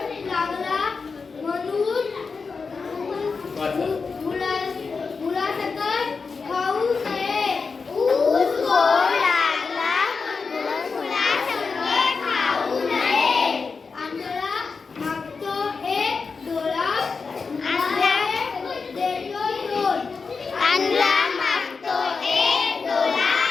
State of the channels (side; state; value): right; quieter; 4.8 dB